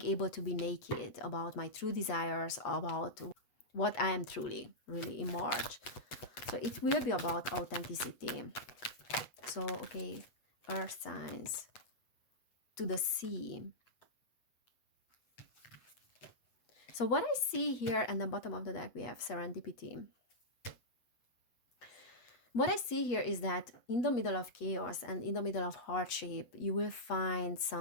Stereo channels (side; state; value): right; late; 8.3 ms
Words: able to be naked about my true desires, about what I am truly, really in March. So it will be about authenticity. So, okay, earth signs. To the sea. So what I see here at the bottom of the deck, we have serendipity. What I see here is that in the middle of chaos and in the middle of hardship, you will find